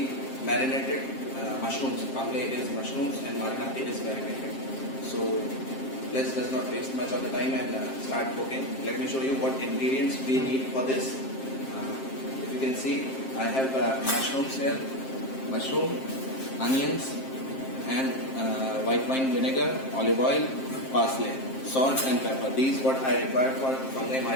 marinated mushrooms. Fungi is mushrooms and marinati is marinated. So let's just not waste much of the time and start cooking. Let me show you what ingredients we need for this. If you can see, I have mushrooms here, mushroom, onions, and white wine vinegar, olive oil, parsley, salt and pepper. These what I require for fungi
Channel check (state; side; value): late; right; 7.6 ms